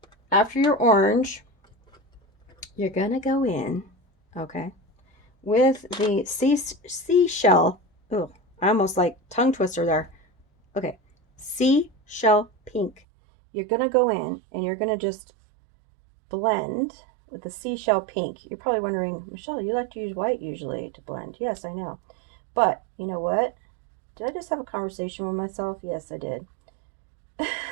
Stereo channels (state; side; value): drops out; left; at 13.0 s